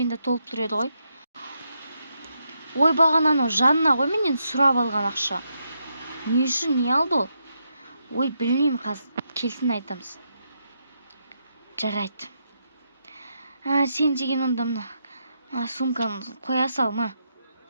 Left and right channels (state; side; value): inverted; both; correlation -0.81